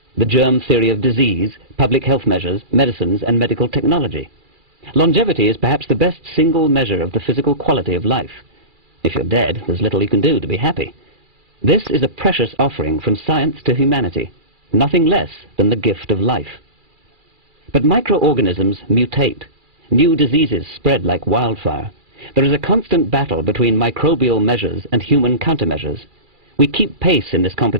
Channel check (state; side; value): late; left; 2.4 ms